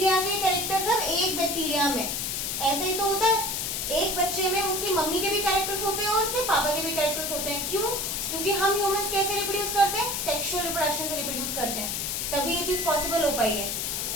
के कैरेक्टर सब एक बैक्टीरिया में, ऐसे ही तो होता है, एक बच्चे में उसकी मम्मी के भी कैरेक्टर्स होते हैं और उसके पापा के भी कैरेक्टर्स होते हैं। क्यों, क्योंकि हम ह्यूमंस कैसे रिप्रोड्यूस करते हैं, सेक्सुअल रिप्रोडक्शन से रिप्रोड्यूस करते हैं, तभी ये चीज पॉसिबल हो पाई है।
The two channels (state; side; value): noise; left; hiss, 1 dB below the sound